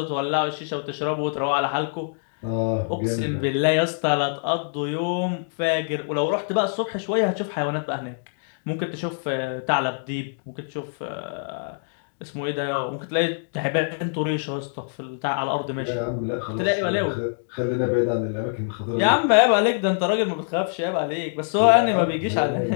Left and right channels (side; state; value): right; silent; digital silence